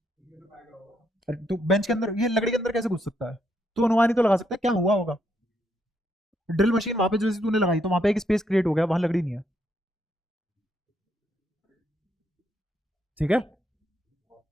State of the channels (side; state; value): both; normal; correlation 0.76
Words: अरे तो बेंच के अंदर, ये लकड़ी के अंदर कैसे घुस सकता है? तू अनुमान ही तो लगा सकता है क्या हुआ होगा। ड्रिल मशीन वहां पे जैसे तूने लगाई, तो वहां पे एक स्पेस क्रिएट हो गया, वहां लकड़ी नहीं है। ठीक है,